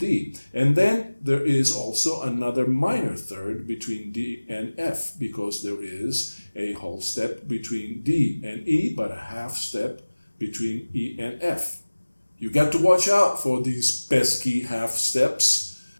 And then there is also another minor third between D and F because there is a whole step between D and E, but a half step between E and F. You got to watch out for these pesky half steps.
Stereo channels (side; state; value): both; inverted; correlation -1.00